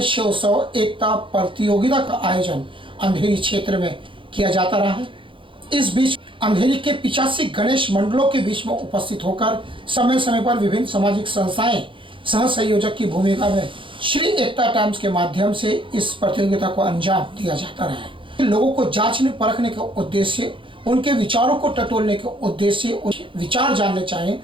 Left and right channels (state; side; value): late; left; 0.25 ms